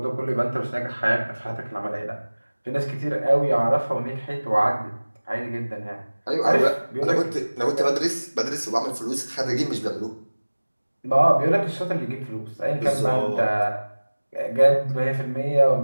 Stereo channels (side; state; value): both; inverted; correlation -1.00